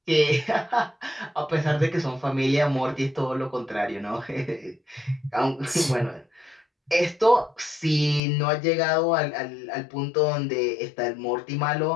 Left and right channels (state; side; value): drops out; right; at 8.2 s